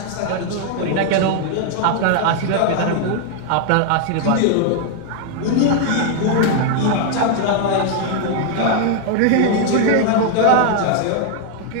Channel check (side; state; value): both; different; correlation 0.00